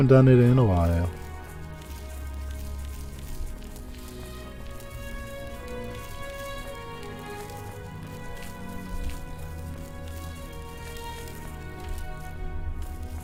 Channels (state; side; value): identical; both; correlation 1.00